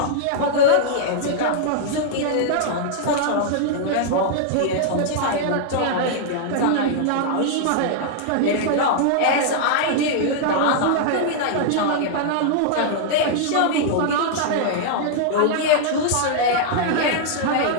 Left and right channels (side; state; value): both; different; correlation -0.01